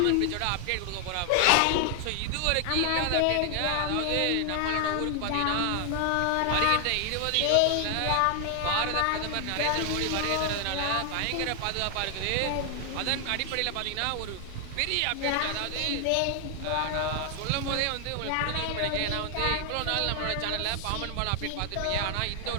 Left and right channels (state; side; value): different; both; correlation 0.00